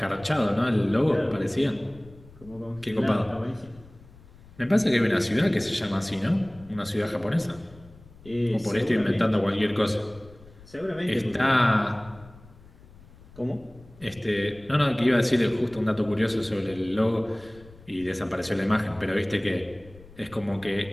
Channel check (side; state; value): left; noise; rumble, 22 dB below the sound